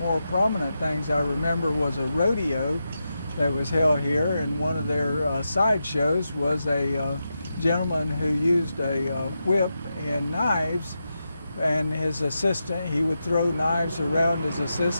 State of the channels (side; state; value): both; inverted; correlation -0.88